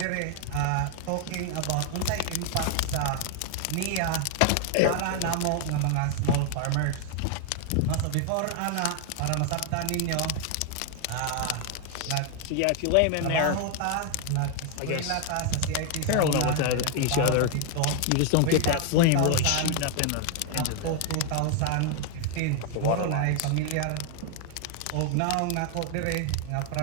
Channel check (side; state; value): both; different; correlation 0.00